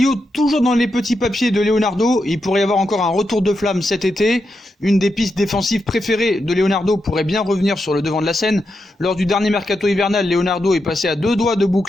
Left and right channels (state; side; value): normal; both; correlation 0.86